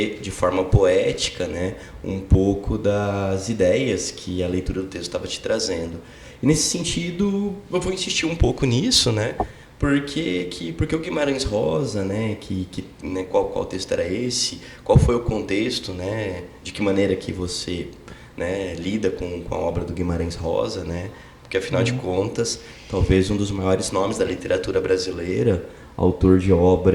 de forma poética, né, um pouco das ideias que a leitura do texto estava te trazendo. E nesse sentido, eu vou insistir um pouco nisso, né, porque o Guimarães Rosa, né, né, qual texto era esse, qual foi o contexto, né, de que maneira que você, né, lida com a obra do Guimarães Rosa, né, porque afinal de contas, talvez um dos maiores nomes da literatura brasileira, autor de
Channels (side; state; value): both; identical; correlation 1.00